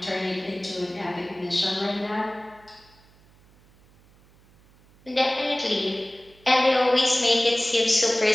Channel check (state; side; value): noise; right; hum, 29 dB below the sound